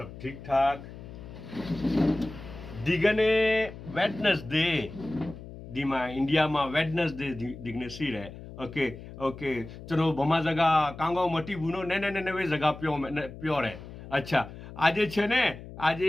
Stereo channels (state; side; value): noise; left; hum, 14 dB below the sound